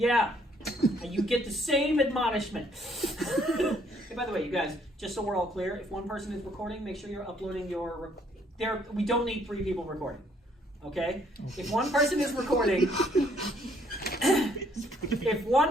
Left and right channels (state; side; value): normal; both; correlation 0.66